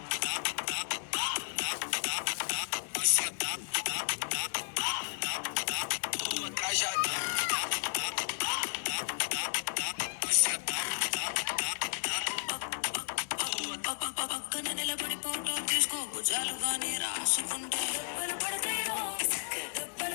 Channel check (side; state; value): right; silent; digital silence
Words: పక్కన నిలబడి ఫోటో తీసుకో భుజాలుగానే రాసుకుంటే దెబ్బలు పడతాయి రో దెబ్బలు